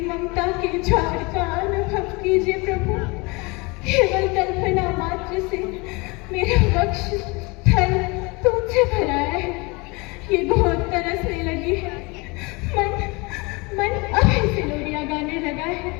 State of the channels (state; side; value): quieter; right; 26.7 dB